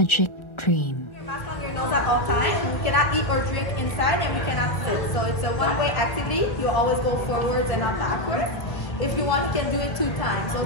dream. Mask on your nose at all times. You cannot eat or drink inside and we cannot sit. So it's a one-way activity. You always go forwards and not backwards. If you want, you can do it 2 times.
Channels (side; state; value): right; late; 1.0 ms